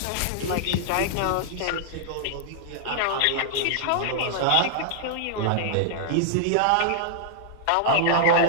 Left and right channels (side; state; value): both; different; correlation -0.01